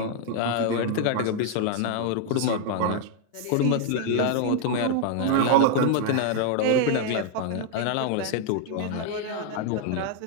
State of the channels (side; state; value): both; different; correlation 0.00